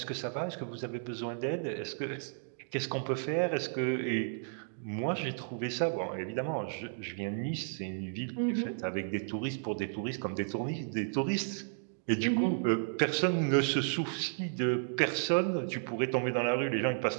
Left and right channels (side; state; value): left; silent; digital silence